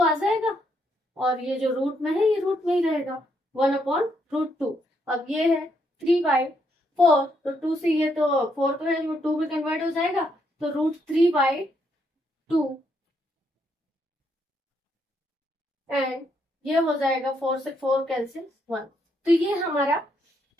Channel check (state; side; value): normal; both; correlation 0.75